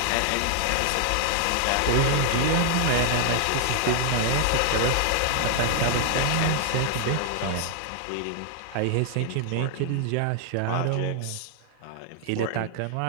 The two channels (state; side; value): different; both; correlation 0.00